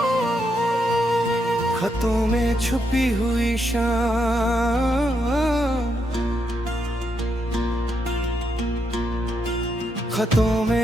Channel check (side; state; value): both; normal; correlation 0.80